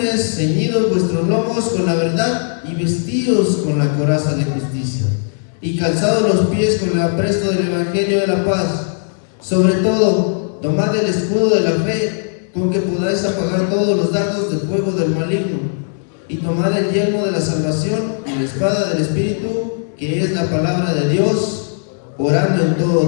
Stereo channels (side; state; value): right; silent; digital silence